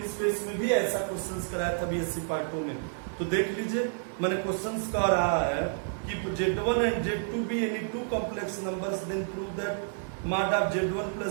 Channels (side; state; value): left; silent; 58 dB below the other